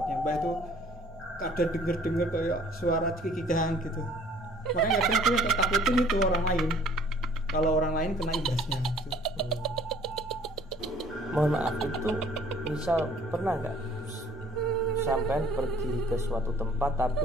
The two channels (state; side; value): normal; both; correlation 0.55